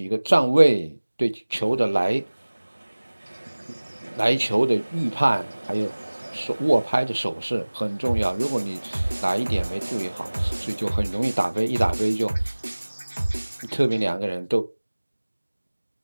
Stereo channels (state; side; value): inverted; both; correlation -1.00